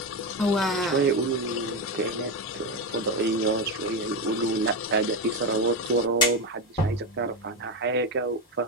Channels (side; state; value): both; normal; correlation 0.14